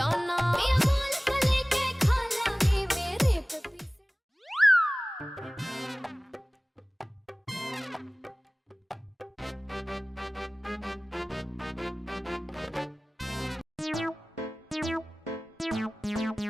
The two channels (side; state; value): both; normal; correlation 0.98